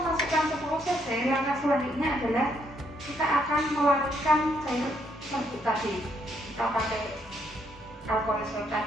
10 cc, langkah selanjutnya adalah kita akan melarutkan cair serbuk tadi. Kita pakai alkohol swab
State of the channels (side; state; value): both; normal; correlation 0.73